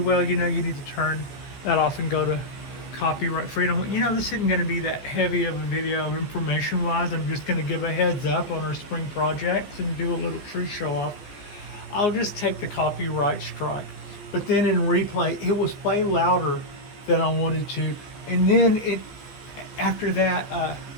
you know, you need to turn that off and go to copyright freedom. You know, this isn't going to be that heavy of a video information wise. I'm just going to give a heads up on our spring projects and do a little tree show off. I'll just take the copyright strike. But then in replay, it was way louder than I wanted to. And then after that, I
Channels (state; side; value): late; right; 15 ms